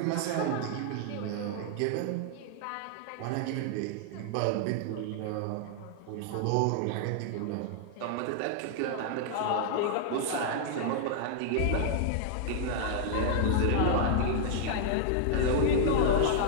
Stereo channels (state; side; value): different; both; correlation -0.01